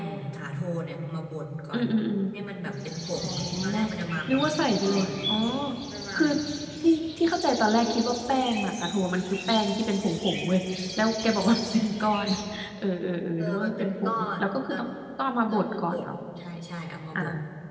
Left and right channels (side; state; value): both; identical; correlation 1.00